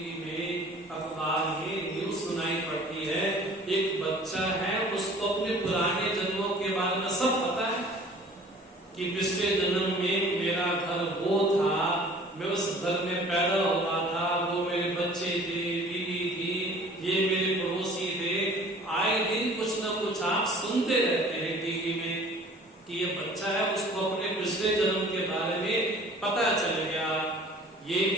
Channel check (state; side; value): normal; both; correlation 0.49